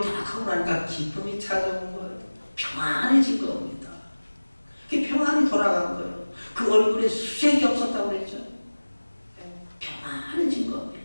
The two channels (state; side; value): inverted; both; correlation -1.00